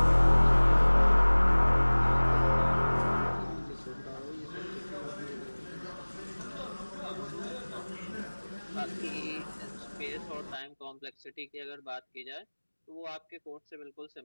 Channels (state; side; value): inverted; both; correlation -1.00